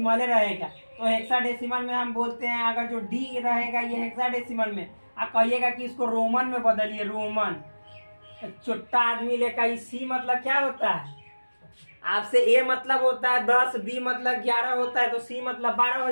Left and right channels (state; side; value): inverted; both; correlation -1.00